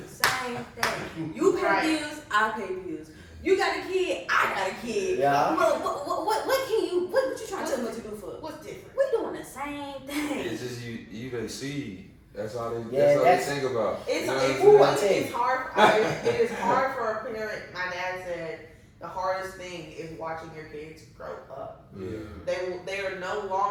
same thing. You pay bills, I pay bills. You got a kid, I got a kid. Yeah. What you trying to tell me to do for? What's different? We doing the same thing. It's just you they see. That's all they think about. It's hard. It is hard for a parent. My dad said the hardest thing is watching your kids grow up. Yeah. They are no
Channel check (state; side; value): identical; both; correlation 1.00